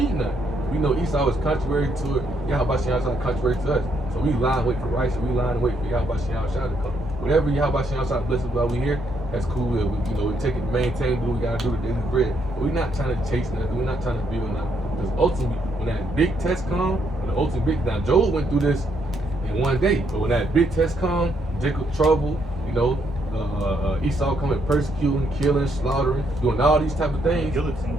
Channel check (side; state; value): both; normal; correlation 0.74